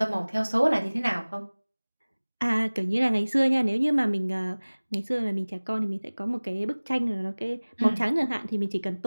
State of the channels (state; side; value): inverted; both; correlation -1.00